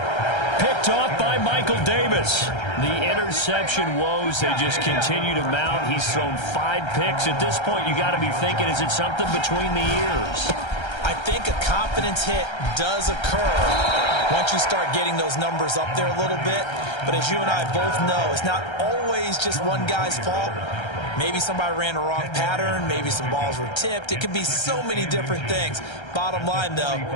Picked off by Michael Davis. The interception woes, they just continue to mount. He's thrown 5 picks. At this point, you got to be thinking, is it something between the ears? I think a confidence hit does occur once you start getting those numbers up there a little bit. But as you and I both know, it's not always just one guy's fault. Maybe somebody ran a wrong pattern. Maybe some balls were tipped. It could be so many different things. Bottom line, though,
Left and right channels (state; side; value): late; right; 1.3 ms